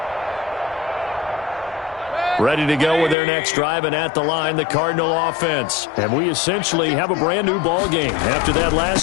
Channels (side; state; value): right; drops out; at 3.2 s